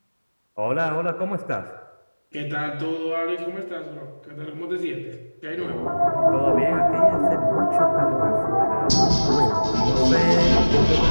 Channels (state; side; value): inverted; both; correlation -1.00